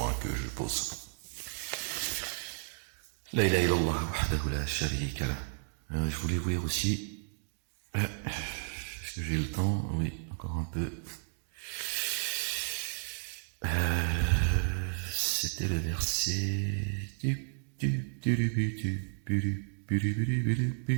que je pose. La ilaha illallah wahdahu la sharika lah. Je voulais vous lire aussi, est-ce que j'ai le temps? Oui, encore un peu. C'était le verset.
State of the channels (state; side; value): silent; left; digital silence